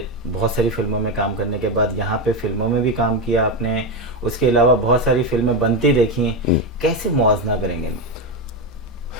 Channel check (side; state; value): both; normal; correlation 0.11